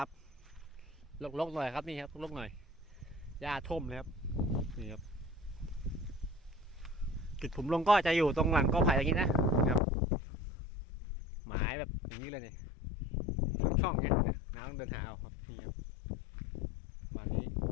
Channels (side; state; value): right; drops out; at 9.8 s